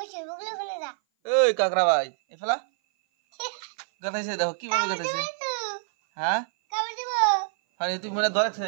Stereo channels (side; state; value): left; silent; 57 dB below the other